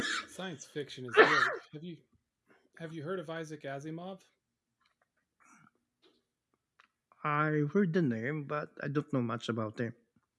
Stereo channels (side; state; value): both; identical; correlation 1.00